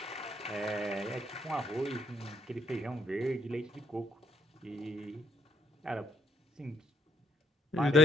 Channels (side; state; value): both; normal; correlation 0.70